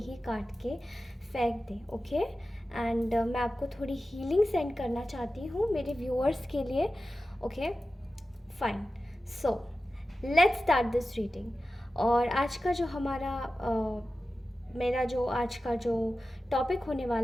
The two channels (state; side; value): normal; both; correlation 0.94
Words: काट के फेंक दें। ओके एंड मैं आपको थोड़ी हीलिंग सेंड करना चाहती हूँ मेरे व्यूअर्स के लिए। Okay fine, so let's start this reading. और आज का जो हमारा मेरा जो आज का जो टॉपिक होने